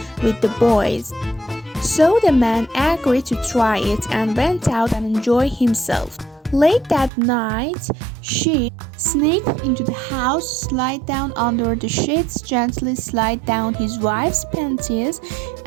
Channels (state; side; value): drops out; left; at 7.1 s